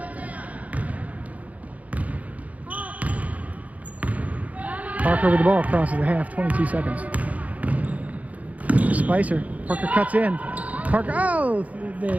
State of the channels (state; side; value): late; left; 0.071 ms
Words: Parker with the ball, crosses the half, 22 seconds. Spicer, Parker cuts in. Parker,